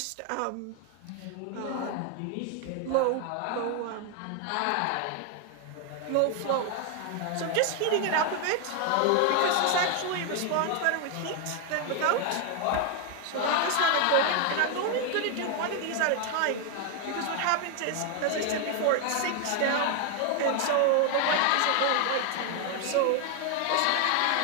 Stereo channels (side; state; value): both; different; correlation 0.01